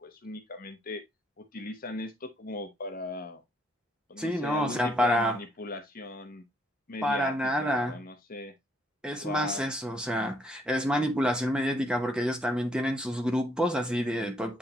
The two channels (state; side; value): normal; both; correlation 0.70